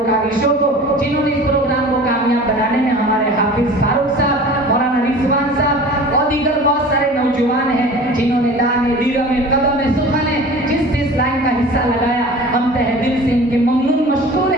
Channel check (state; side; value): normal; both; correlation 0.40